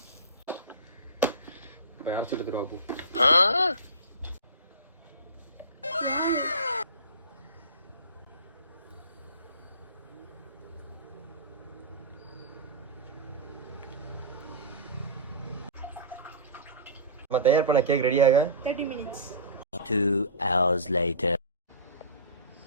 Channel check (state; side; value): inverted; both; correlation -0.32